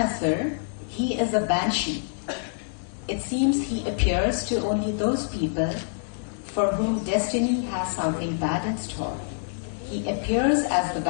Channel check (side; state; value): right; silent; digital silence